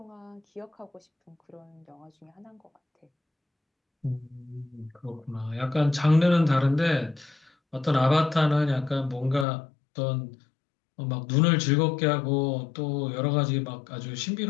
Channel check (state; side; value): drops out; right; at 9.5 s